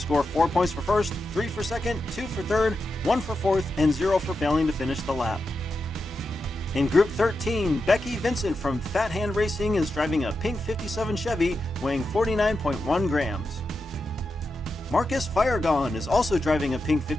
4 points for first, 3 for second, 2 for third, 1 for fourth, and 0 for failing to finish the lap. In Group 13, Becky Vincent from Fat Hand Racing is driving a pink 57 Chevy weighing 49.1 grams. Marcus Firegone is also driving a pink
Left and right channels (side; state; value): both; normal; correlation 0.88